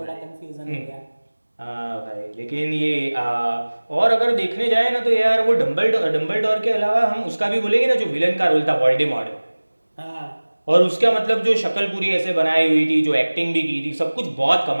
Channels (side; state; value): both; inverted; correlation -1.00